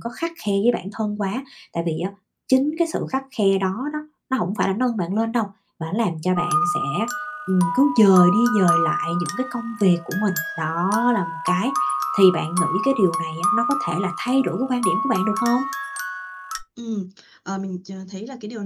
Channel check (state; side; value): identical; both; correlation 1.00